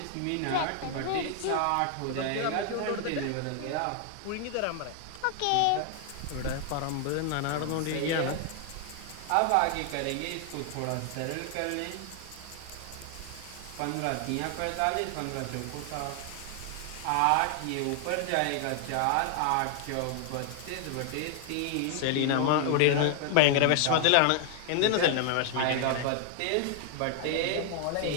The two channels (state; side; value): different; both; correlation 0.00